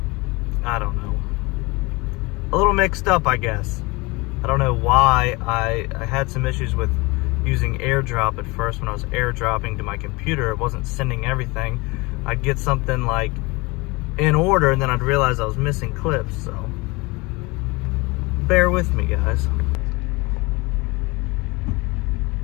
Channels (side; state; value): right; quieter; 24.8 dB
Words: I don't know, a little mixed up, I guess. I don't know why. I had some issues with using AirDrop at first. When I was AirDropping to my computer, it wasn't sending everything. I'd get something like in order, and then I'd realize I was missing clips, so bear with me, guys.